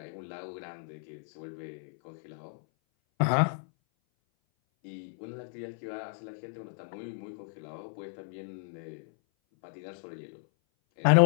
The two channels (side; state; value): right; silent; 56 dB below the other